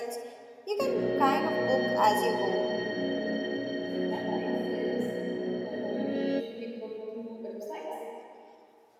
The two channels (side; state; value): both; identical; correlation 1.00